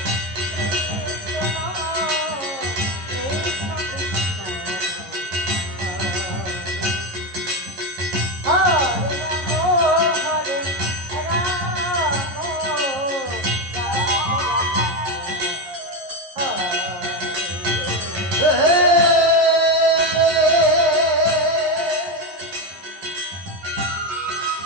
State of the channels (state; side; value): late; left; 11 ms